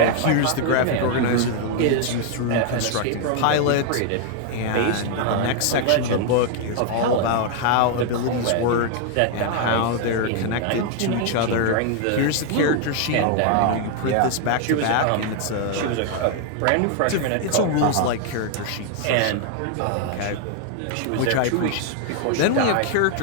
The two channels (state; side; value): different; both; correlation 0.00